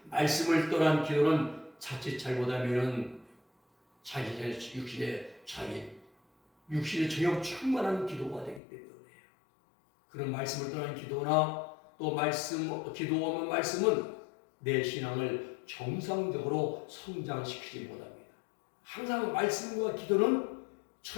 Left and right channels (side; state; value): right; drops out; at 8.6 s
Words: 말씀을 떠난 기도는 자칫 잘못하면 자기 육신의 정욕 충만한 기도가 되기 때문이에요. 그런 말씀을 떠난 기도나 또 기도 없는 말씀은 내 신앙을 정상적으로 성장시키지 못합니다. 항상 말씀과 기도는